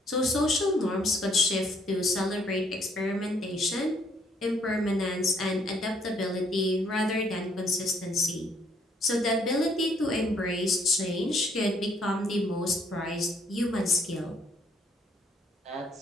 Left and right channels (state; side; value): normal; both; correlation 0.66